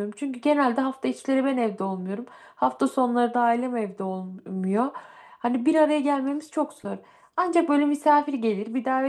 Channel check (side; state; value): both; identical; correlation 1.00